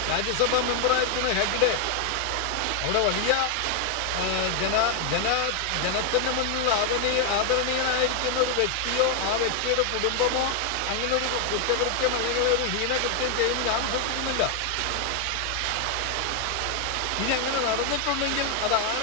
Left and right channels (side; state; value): both; different; correlation 0.01